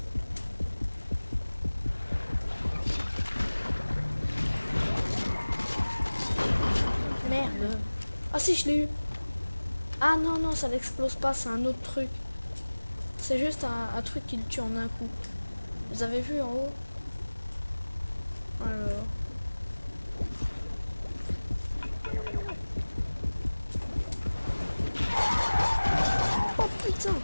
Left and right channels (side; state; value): both; inverted; correlation -1.00